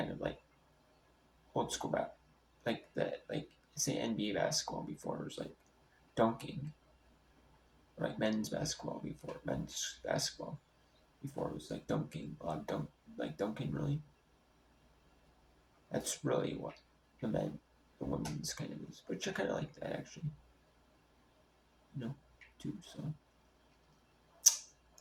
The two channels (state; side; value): identical; both; correlation 1.00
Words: of like old school like that, like say NBA basketball before it was like dunking, or like men's basketball before men's basketball before it was like dunking, a lot of like dunking really. That's really what the women's kind of is, which I kind of like that actually, too. So,